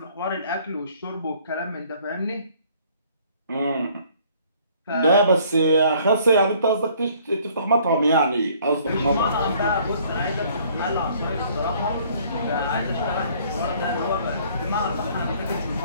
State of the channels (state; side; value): inverted; both; correlation -0.58